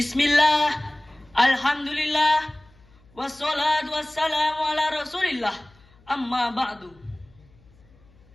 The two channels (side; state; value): left; noise; hum, 29 dB below the sound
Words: alhamdulillah, wassalatu wassalamu ala rasulillah, amma ba'du.